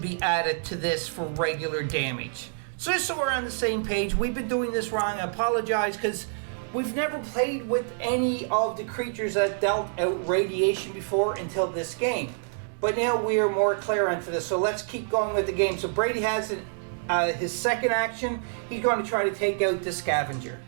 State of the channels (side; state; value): left; silent; digital silence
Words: added to this for regular damage. So just so we're on the same page, we've been doing this wrong. I apologize because we've never played with any of the creatures that dealt out radiation before until this game. But now we are more clear onto this, so let's keep going with the game. So Brady has his second action. He's going to try to take out the scavenger.